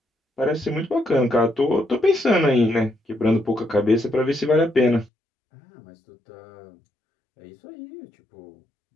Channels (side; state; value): right; drops out; at 5.1 s